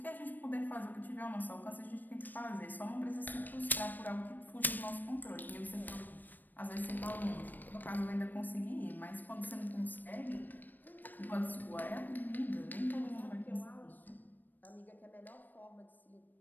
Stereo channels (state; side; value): late; right; 0.089 ms